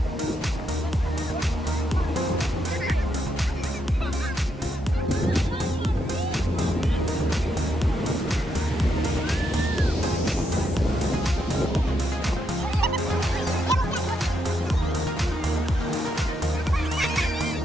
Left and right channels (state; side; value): normal; both; correlation 0.79